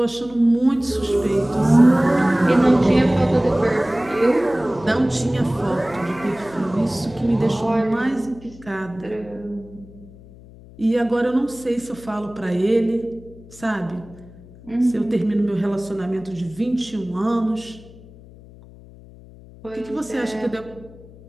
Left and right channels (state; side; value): noise; left; hum, 21 dB below the sound